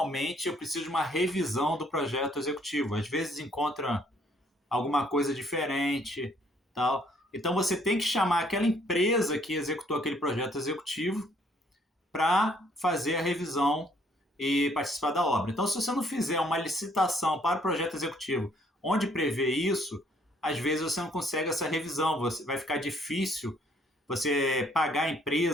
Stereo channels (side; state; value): both; normal; correlation 0.65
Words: eu preciso de uma revisão do projeto executivo. Às vezes encontra alguma coisa diferente, tal. Então você tem que chamar aquela empresa que executou aquele projeto executivo para fazer a revisão e participar da obra. Então, se você não fizer uma licitação para o projeto executivo onde prevê isso, às vezes você não consegue essa revisão. Vai ficar difícil você pagar a